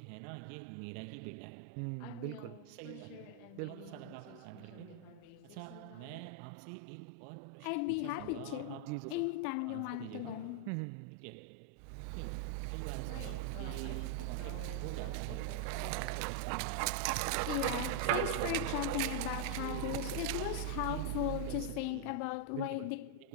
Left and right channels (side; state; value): both; different; correlation 0.00